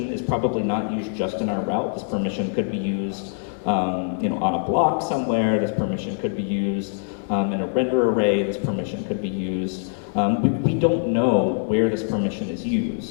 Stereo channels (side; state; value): right; silent; digital silence